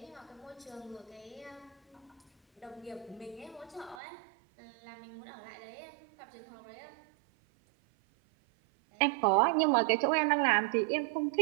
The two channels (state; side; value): drops out; left; at 4.0 s